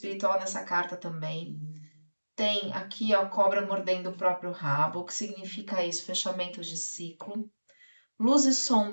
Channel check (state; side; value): inverted; both; correlation -1.00